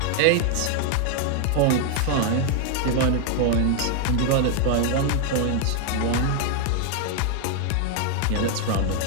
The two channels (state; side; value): different; both; correlation 0.00